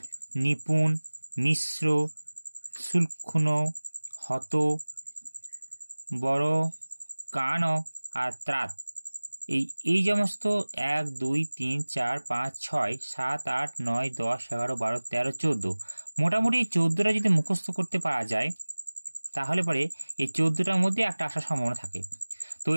নিপুণ, মিশ্র, সুলক্ষণ, হত, বড়, কান আর ত্রাত, এই সমস্ত 1 2 3 4 5 6 7 8 9 10 11 12 13 14 মোটামুটি 14টা যদি মুখস্থ করতে পারা যায় তাহলে পরে এই 14টার মধ্যে একটা আসার সম্ভাবনা থাকে। তো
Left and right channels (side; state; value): both; inverted; correlation -1.00